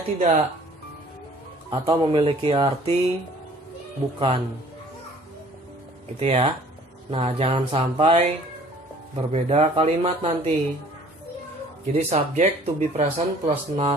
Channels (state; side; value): normal; both; correlation 0.53